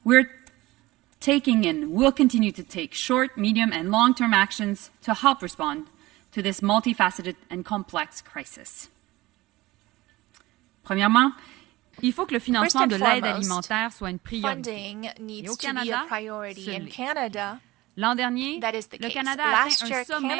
We're taking and will continue to take short, medium, and long-term actions to help respond to this multifaceted and complex crisis. Premièrement, il faut que le financement de l'aide alimentaire soit une priorité. Et au Canada, l'an dernier, le Canada a atteint un sommet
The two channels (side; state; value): left; quieter; 19.1 dB